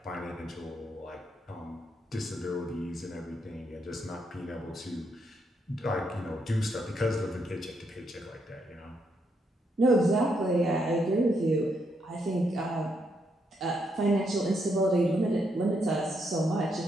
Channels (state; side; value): normal; both; correlation 0.77